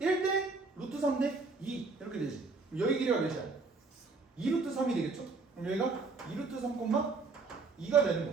루트 3대 2 이렇게 되지. 그럼 여기 길이가 몇이야? 2루트 3이 되겠죠? 그럼 여기가 2루트 3, 2가 되는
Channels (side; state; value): left; quieter; 4.1 dB